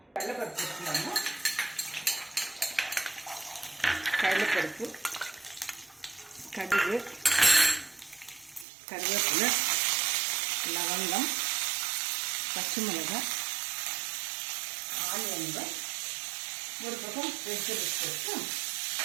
கடலைப்பருப்பு வச்சுக்கலாங்க. கடலைப்பருப்பு, கடுகு, கருவேப்பிலை, லவங்கம், பச்சை மிளகாய், ஆனியன்கள், ஒரு பக்கம் வெஜிடபிள்ஸ் போட்டு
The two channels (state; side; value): drops out; left; at 8.7 s